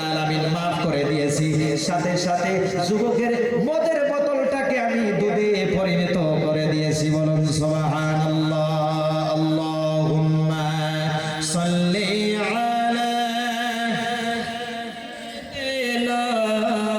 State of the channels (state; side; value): identical; both; correlation 1.00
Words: আলামিন মাফ করে দিয়েছি। সাথে সাথে যুবকের মদের বোতলটাকে আমি দুধে পরিণত করে দিয়েছি। বলুন সুবহানাল্লাহ। আল্লাহুম্মা সাল্লি আলা